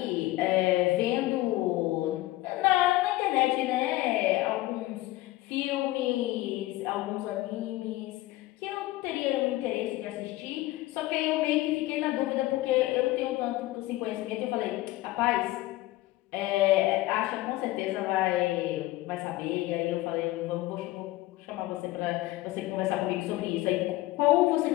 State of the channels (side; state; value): right; quieter; 17.7 dB